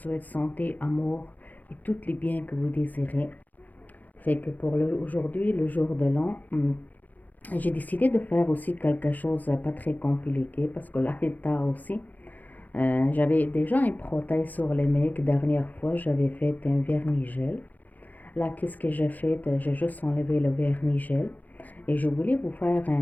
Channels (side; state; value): right; late; 0.082 ms